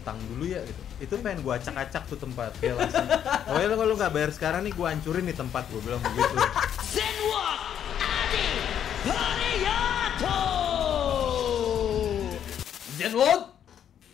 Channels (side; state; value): right; quieter; 9.4 dB